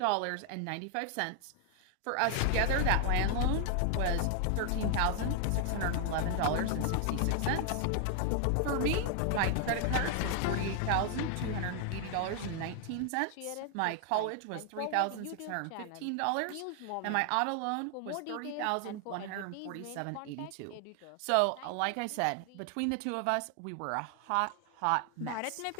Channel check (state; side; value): different; both; correlation 0.00